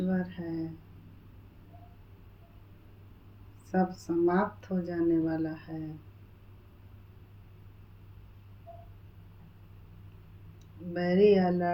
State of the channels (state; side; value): identical; both; correlation 1.00